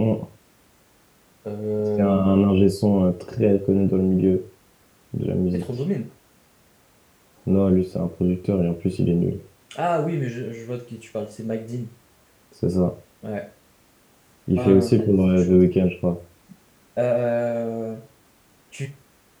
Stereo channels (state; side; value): identical; both; correlation 1.00